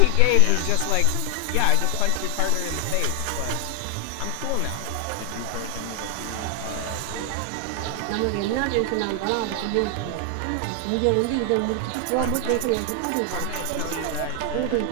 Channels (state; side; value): different; both; correlation 0.00